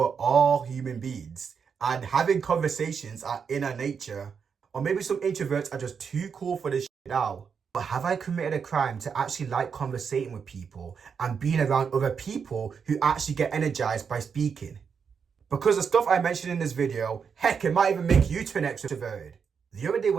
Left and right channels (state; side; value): quieter; left; 6.4 dB